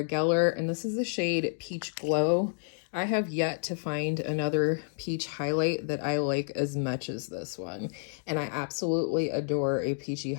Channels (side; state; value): right; silent; 58 dB below the other